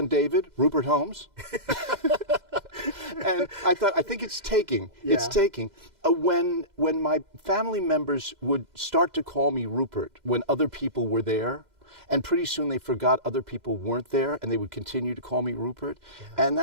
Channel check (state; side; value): late; left; 2.1 ms